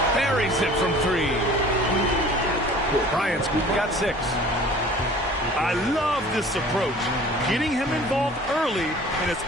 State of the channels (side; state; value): both; normal; correlation 0.47